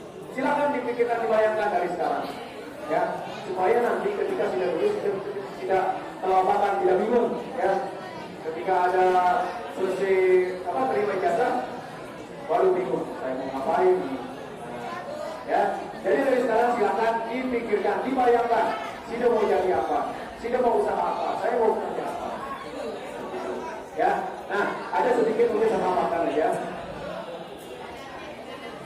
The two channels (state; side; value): identical; both; correlation 1.00